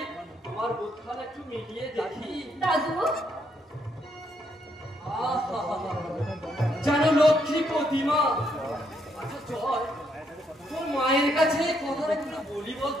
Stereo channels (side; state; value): both; normal; correlation 0.74